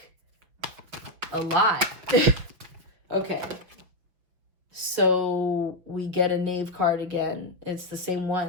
a lot. Okay, so we get a Knave card again. It's the same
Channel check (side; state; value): left; late; 6.1 ms